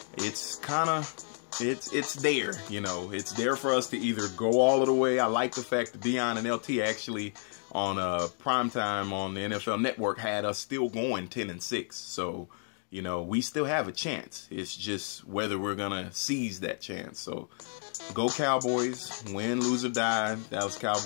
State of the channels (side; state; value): right; silent; 56 dB below the other